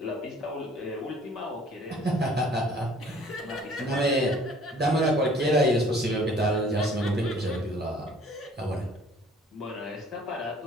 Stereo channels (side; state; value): both; normal; correlation 0.54